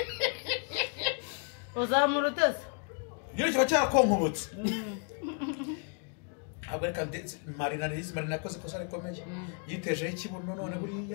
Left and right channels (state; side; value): quieter; right; 39.4 dB